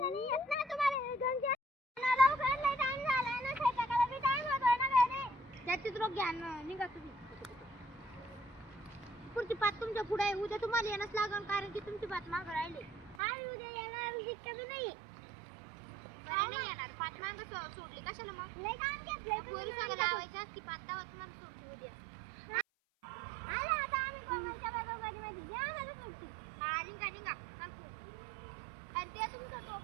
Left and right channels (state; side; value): drops out; left; at 13.2 s